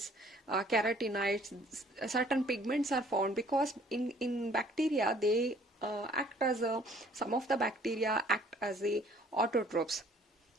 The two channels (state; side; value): normal; both; correlation 0.57